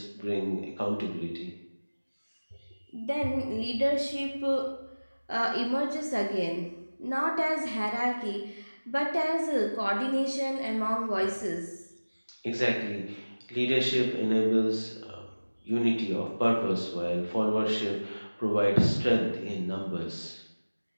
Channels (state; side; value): inverted; both; correlation -1.00